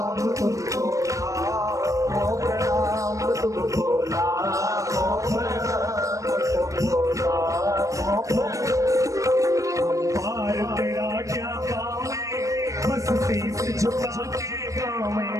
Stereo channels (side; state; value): left; late; 0.16 ms